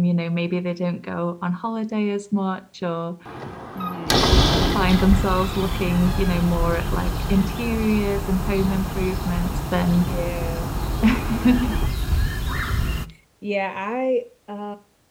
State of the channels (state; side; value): identical; both; correlation 1.00